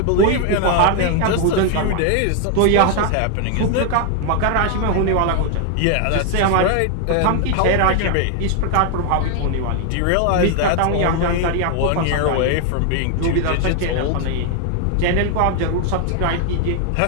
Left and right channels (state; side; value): different; both; correlation 0.00